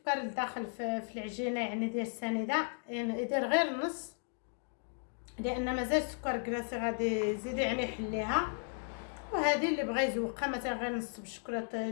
الداخل في العجينه يعني ديال السنيده، يعني يدير غير نص، لان مازال السكر كلاصي غادي يزيد يعني يحليها. وهذه اللي بغى يزوقها مثلا غير نص بالشكلاطه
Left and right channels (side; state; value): right; silent; 54 dB below the other